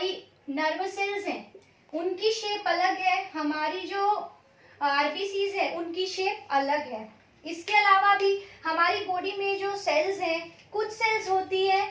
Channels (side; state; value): both; identical; correlation 1.00